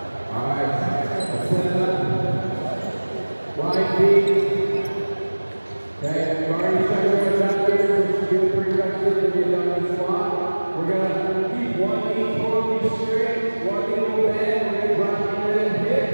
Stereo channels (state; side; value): inverted; both; correlation -1.00